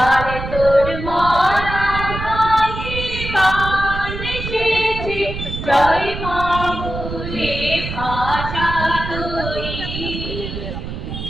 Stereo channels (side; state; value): right; noise; rumble, 7 dB below the sound